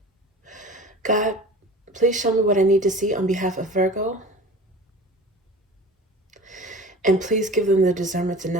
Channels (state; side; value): normal; both; correlation 0.38